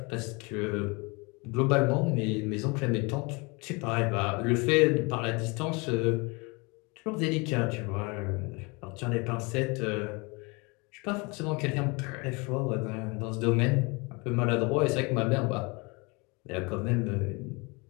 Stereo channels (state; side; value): quieter; right; 28.4 dB